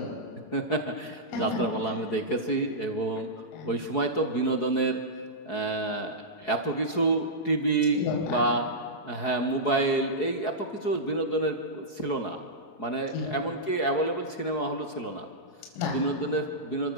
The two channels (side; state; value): right; late; 4.7 ms